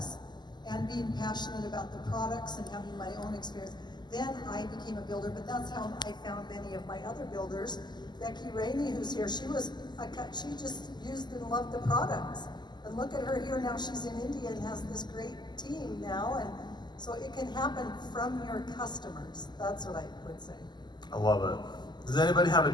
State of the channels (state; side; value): late; right; 0.21 ms